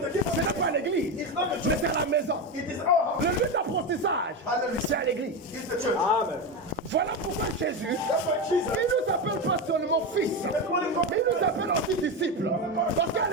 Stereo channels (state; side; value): normal; both; correlation 0.16